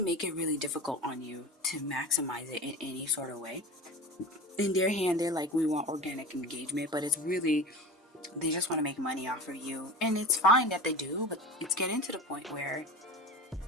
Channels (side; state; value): both; normal; correlation 0.32